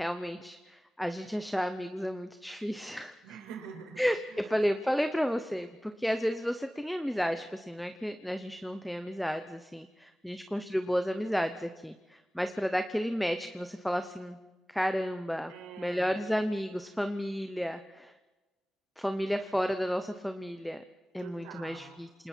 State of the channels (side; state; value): both; normal; correlation 0.97